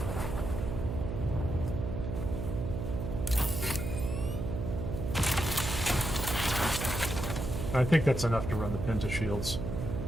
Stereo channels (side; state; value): right; noise; hum, 4 dB below the sound